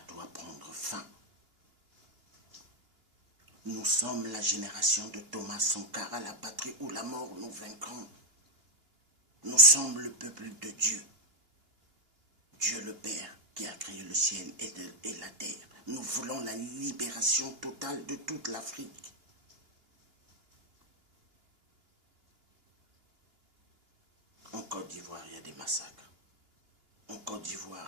doit prendre fin. Nous sommes la génération de Thomas Sankara, la patrie ou la mort, nous vaincrons. Nous sommes le peuple de Dieu. Dieu le Père qui a créé le ciel et la terre. Nous voulons la libération totale de toute l'Afrique. En Côte d'Ivoire, il y a des massacres. En Côte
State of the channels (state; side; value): late; left; 2.9 ms